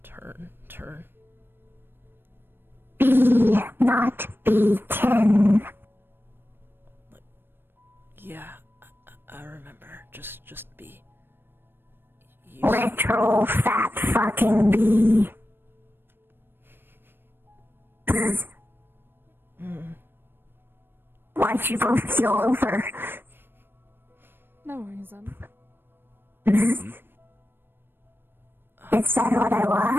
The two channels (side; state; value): left; late; 0.099 ms